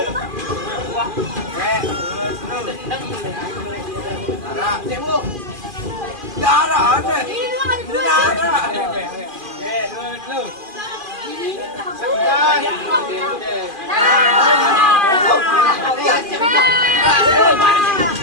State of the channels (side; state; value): left; late; 2.4 ms